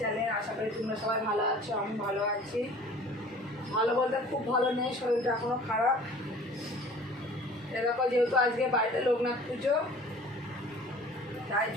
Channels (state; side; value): normal; both; correlation 0.47